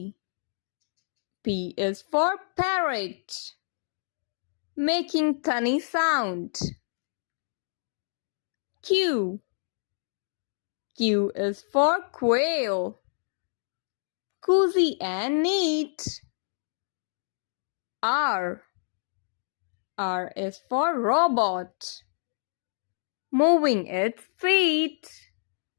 P is for parrot, making funny sound. Q. Q is for quail, cozy and neat. R. R is for robot, moving its feet.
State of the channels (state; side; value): silent; right; digital silence